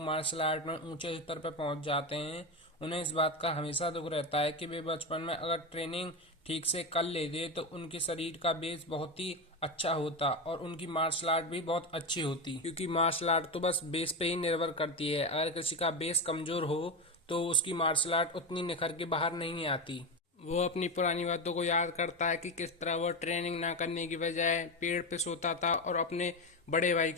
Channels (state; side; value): normal; both; correlation 0.16